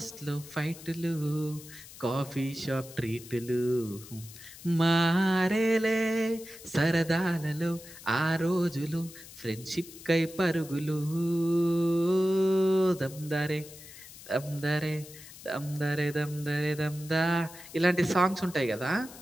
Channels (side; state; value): left; noise; hiss, 17 dB below the sound